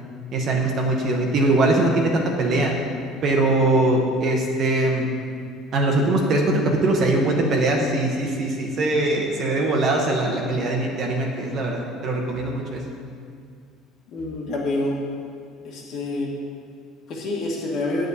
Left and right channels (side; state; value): both; normal; correlation 0.47